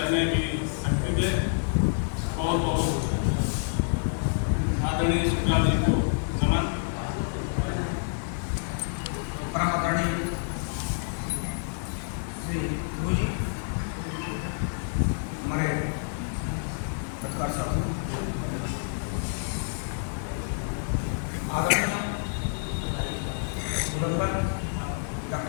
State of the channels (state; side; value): silent; right; 58 dB below the other